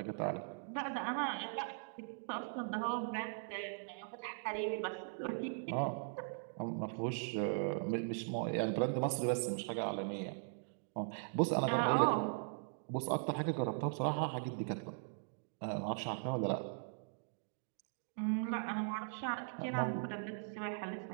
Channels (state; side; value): silent; left; digital silence